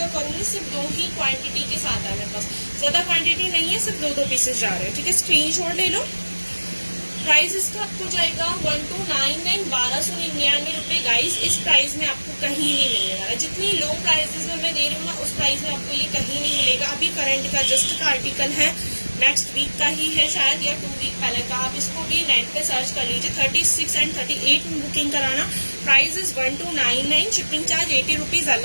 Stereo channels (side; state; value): both; inverted; correlation -1.00